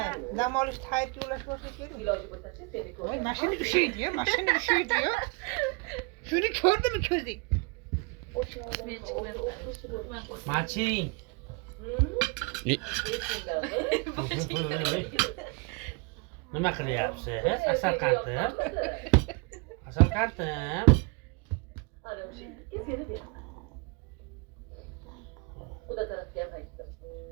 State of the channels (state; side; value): quieter; left; 29.7 dB